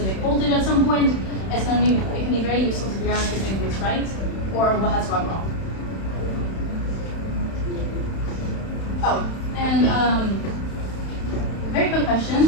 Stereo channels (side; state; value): right; late; 31 ms